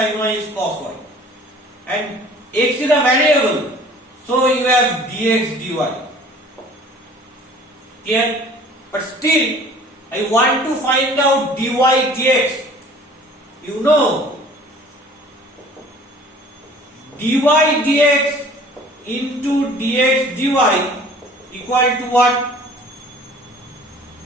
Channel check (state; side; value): normal; both; correlation 0.49